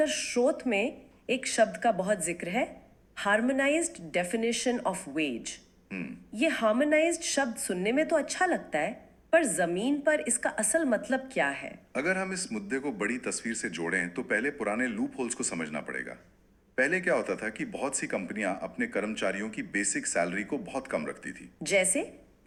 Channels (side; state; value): both; identical; correlation 1.00